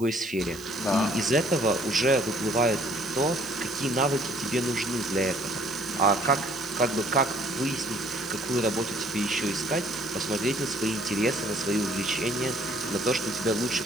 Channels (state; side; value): noise; right; hiss, 18 dB below the sound